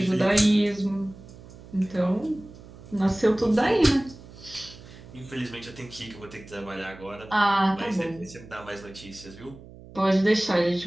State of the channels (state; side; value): noise; right; hum, 19 dB below the sound